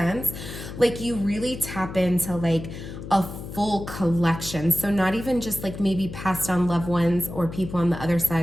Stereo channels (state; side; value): noise; left; hum, 10 dB below the sound